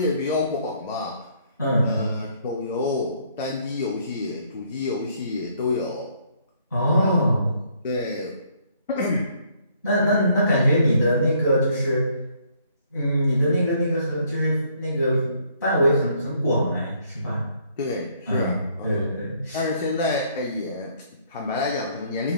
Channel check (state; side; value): inverted; both; correlation -0.66